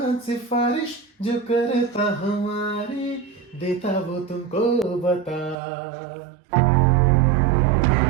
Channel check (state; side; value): drops out; left; at 5.6 s